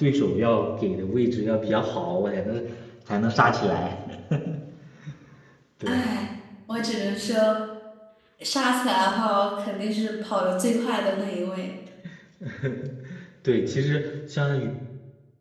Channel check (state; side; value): identical; both; correlation 1.00